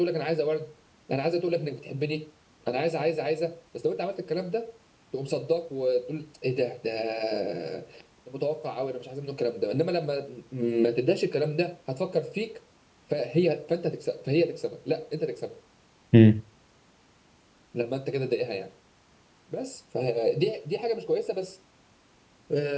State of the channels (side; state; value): both; identical; correlation 1.00